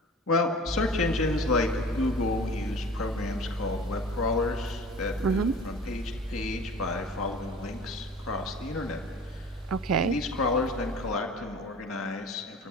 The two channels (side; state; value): both; normal; correlation 0.41